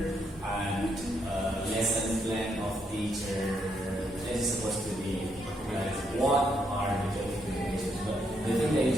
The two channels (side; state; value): both; normal; correlation 0.76